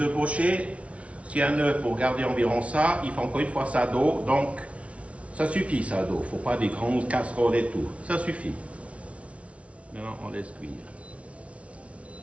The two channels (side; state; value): left; late; 0.063 ms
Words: œufs pochés, si un œuf, pour garder environ ça, il faut encore une fois ça d'eau. Donc, ça suffit ça d'eau. Il ne faut pas des grandes casseroles et tout. Ça suffit. Maintenant, on laisse cuire.